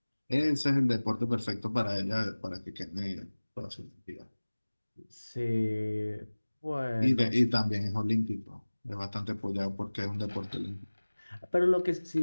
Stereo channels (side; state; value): both; inverted; correlation -1.00